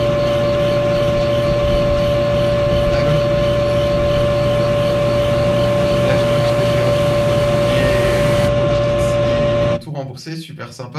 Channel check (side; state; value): both; identical; correlation 1.00